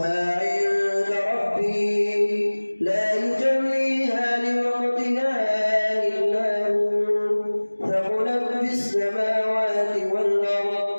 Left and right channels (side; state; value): both; inverted; correlation -1.00